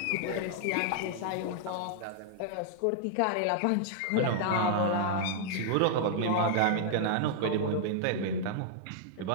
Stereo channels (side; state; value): both; different; correlation -0.01